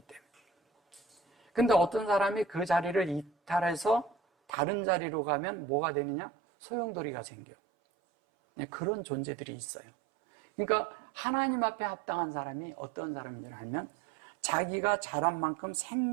때문에. 근데 어떤 사람이 그 자리를 이탈해서 다른 자리로 가면 뭐가 되느냐? 소용돌이가 생겨. 그런 존재들이 있어요. 그러니까 하나님 앞에 합당한 사람이 어떤 사람인지 알면 자기가 자란 만큼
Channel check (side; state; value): left; drops out; at 4.5 s